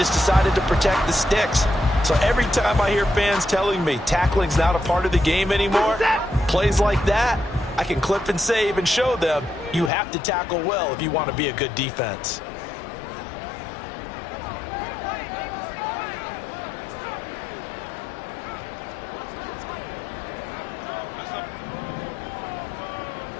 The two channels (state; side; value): drops out; right; at 9.9 s